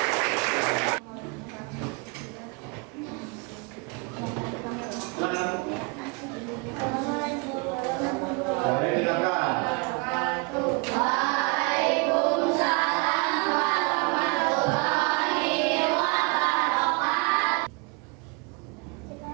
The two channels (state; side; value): quieter; left; 30.6 dB